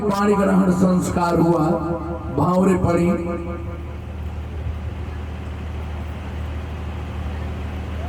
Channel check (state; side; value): identical; both; correlation 1.00